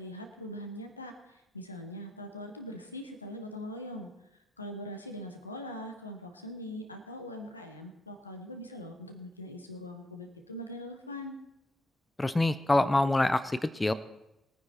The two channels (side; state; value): both; normal; correlation 0.83